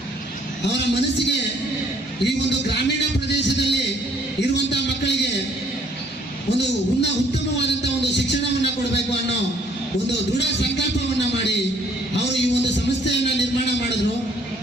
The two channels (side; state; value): both; normal; correlation 0.62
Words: ಅವರ ಮನಸ್ಸಿಗೆ ಈ ಒಂದು ಗ್ರಾಮೀಣ ಪ್ರದೇಶದಲ್ಲಿ ಇರುವಂತಹ ಮಕ್ಕಳಿಗೆ ಒಂದು ಉತ್ತಮವಾದಂತಹ ಒಂದು ಶಿಕ್ಷಣವನ್ನು ಕೊಡಬೇಕು ಅನ್ನೋ ಒಂದು ದೃಢ ಸಂಕಲ್ಪವನ್ನ ಮಾಡಿ ಅವರು ಈ ಒಂದು ಸಂಸ್ಥೆಯನ್ನ ನಿರ್ಮಾಣ ಮಾಡಿದ್ರು.